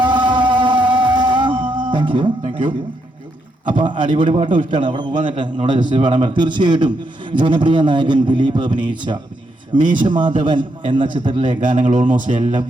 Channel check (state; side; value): normal; both; correlation 0.79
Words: Thank you. അപ്പൊ അടിപൊളി പാട്ടും ഇഷ്ടമാണ്. അവിടെ പോകാൻ നേരത്തെ നമ്മുടെ ജസ്റ്റ് പാടാൻ പറ്റും. തീർച്ചയായിട്ടും ജനപ്രിയ നായകൻ ദിലീപ് അഭിനയിച്ച മീശമാധവൻ എന്ന ചിത്രത്തിലെ ഗാനങ്ങൾ ഓൾമോസ്റ്റ് എല്ലാം